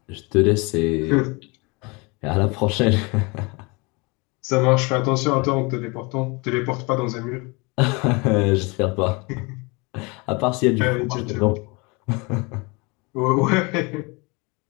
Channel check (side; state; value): right; quieter; 28.1 dB